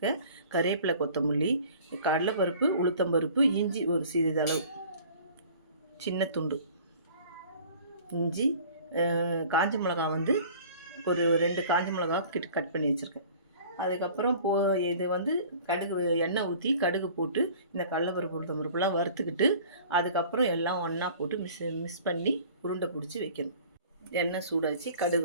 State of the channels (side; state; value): both; inverted; correlation -0.47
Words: கருவேப்பிலை, கொத்தமல்லி, கடலைப்பருப்பு, உளுத்தம்பருப்பு, இஞ்சி ஒரு சிறிதளவு, சின்ன துண்டு இஞ்சி, காஞ்ச மிளகா ஒரு 2 காஞ்ச மிளகா கட் பண்ணி வச்சுருக்கேன். அதுக்கப்புறம் இது கடுகு, எண்ணெய் ஊற்றி கடுகு போட்டு இந்த கடலைப்பருப்பு, உளுத்தம்பருப்புலாம் வறுத்துக்கிட்டு அதுக்கப்புறம் எல்லாம் ஒன்றா போட்டு மிக்ஸ் பண்ணி உருண்டை பிடிச்சி வைக்கணும். எண்ணெய் சூடாச்சு,